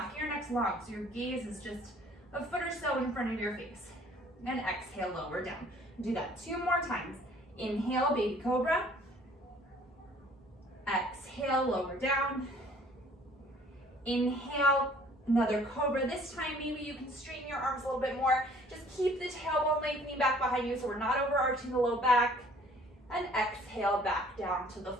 of your neck's long, so your gaze is just a foot or so in front of your face. And exhale, lower down. Do that 2 more times. Inhale, baby cobra. Exhale, lower down. Inhale, another cobra. This time, maybe you can straighten your arms a little bit more. Just keep the tailbone lengthening back behind you so we're not overarching the low back. And exhale, back down to the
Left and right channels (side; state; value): both; normal; correlation 0.56